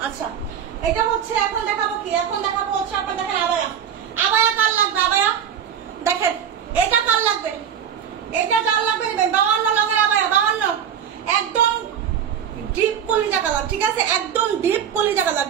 আচ্ছা এটা হচ্ছে এখন দেখাবো কি, এখন দেখাবো হচ্ছে আপনার দেখেন আবায়া, আবায়া কার লাগবে, আবায়া দেখেন এটা কার লাগবে, এটা কার লাগবে 52 লঙের আবায়া, 52 একদম ডিপ কলিজা কালার, ঠিক আছে একদম ডিপ কলিজা কালার,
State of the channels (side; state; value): left; quieter; 8.6 dB